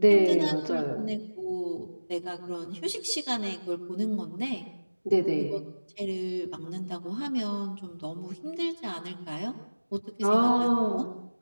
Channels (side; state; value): both; inverted; correlation -1.00